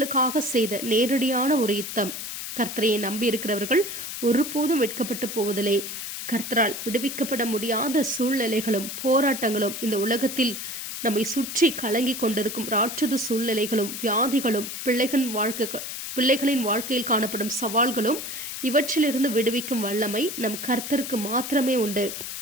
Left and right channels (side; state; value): left; noise; hiss, 7 dB below the sound